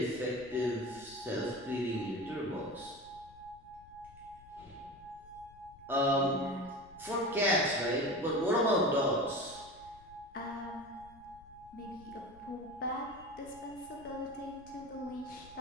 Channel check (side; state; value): left; noise; rumble, 22 dB below the sound